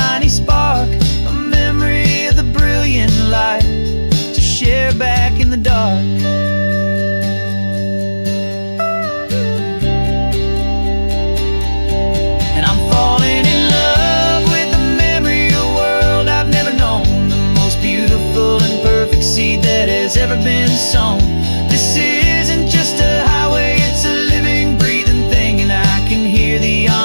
spark, a memory of the brilliant light to share back in the dark. And I'm falling in love with the memory of a world I've never known, the most beautiful and perfect seed that has ever been sown. This isn't just a highway, it's a living, breathing thing, and I can hear the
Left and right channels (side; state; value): both; inverted; correlation -1.00